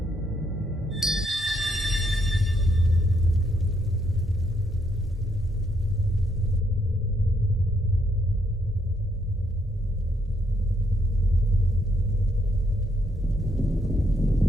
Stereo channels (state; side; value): normal; both; correlation 0.74